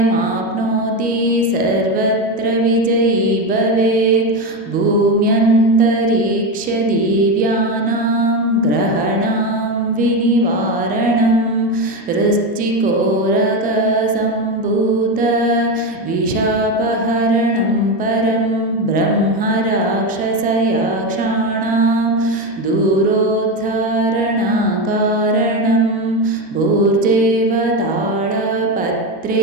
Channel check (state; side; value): normal; both; correlation 0.15